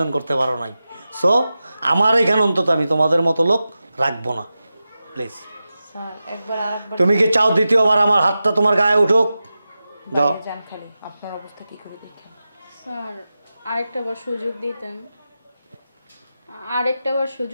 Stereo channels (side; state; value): both; inverted; correlation -0.92